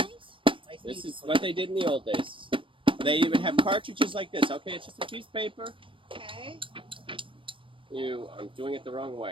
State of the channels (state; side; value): late; left; 0.25 ms